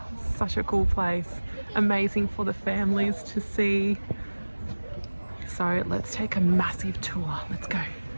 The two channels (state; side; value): inverted; both; correlation -1.00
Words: Such a cool place. Amazing for the families to see. So let's take a massive tour. Let's go.